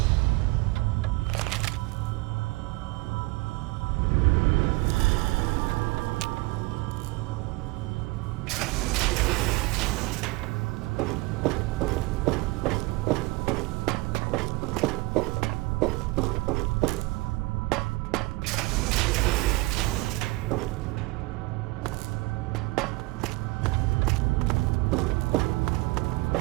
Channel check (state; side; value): quieter; left; 23.2 dB